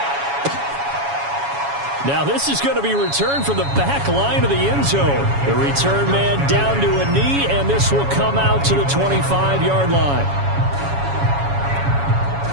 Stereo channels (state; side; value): late; left; 7.2 ms